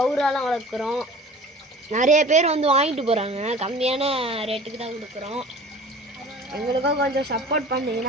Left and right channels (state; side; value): normal; both; correlation 0.43